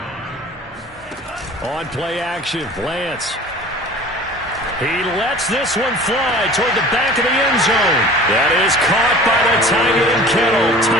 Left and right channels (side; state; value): both; normal; correlation 0.42